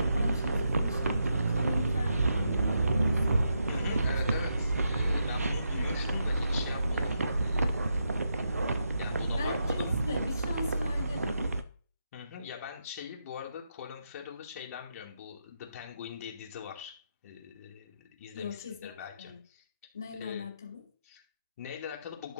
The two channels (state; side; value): inverted; both; correlation -0.82